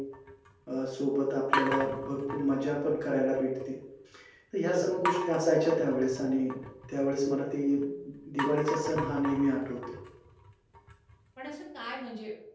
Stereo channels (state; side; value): identical; both; correlation 1.00